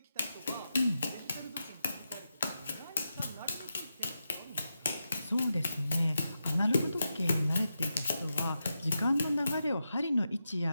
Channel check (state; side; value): inverted; both; correlation -0.88